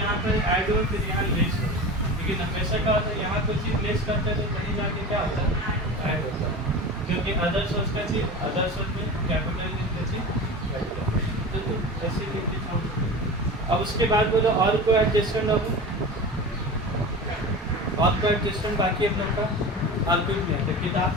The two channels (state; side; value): normal; both; correlation 0.31